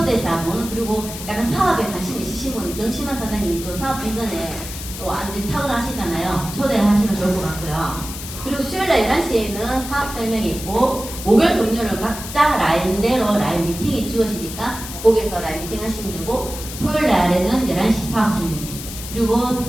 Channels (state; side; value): noise; left; hiss, 10 dB below the sound